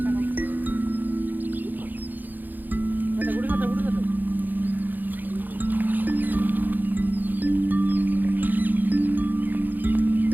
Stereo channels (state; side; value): late; left; 0.086 ms